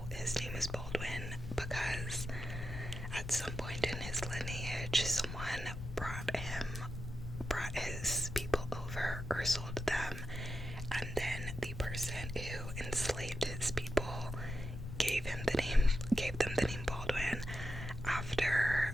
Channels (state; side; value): noise; left; rumble, 8 dB below the sound